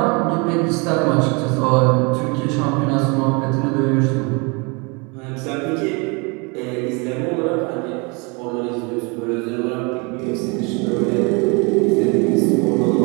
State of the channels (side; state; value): left; quieter; 30.3 dB